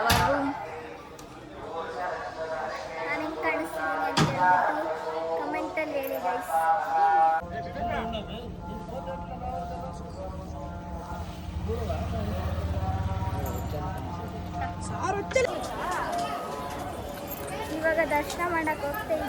ನಾನು ಹೆಂಗೆ ಕಾಣಿಸ್ತೀನಿ ಅಂತ ಹೇಳ್ಬಿಟ್ಟು ಕಮೆಂಟಲ್ಲಿ ಹೇಳಿ ಗೈಸ್. ಇವಾಗ ದರ್ಶನ ಮಾಡಕ್ಕೆ ಹೋಗ್ತಾ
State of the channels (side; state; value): both; identical; correlation 1.00